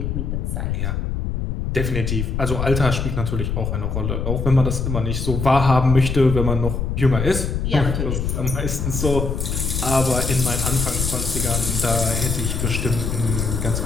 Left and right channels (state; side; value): noise; left; rumble, 1 dB below the sound